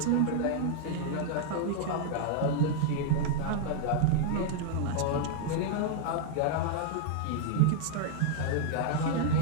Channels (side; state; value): both; different; correlation -0.01